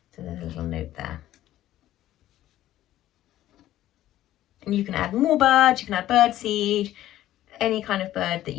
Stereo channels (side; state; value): right; quieter; 13.7 dB